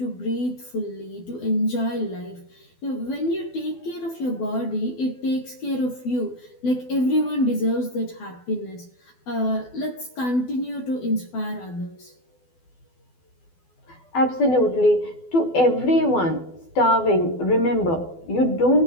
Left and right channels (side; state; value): right; late; 12 ms